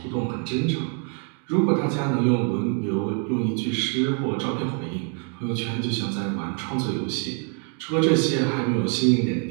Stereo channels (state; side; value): quieter; left; 36.2 dB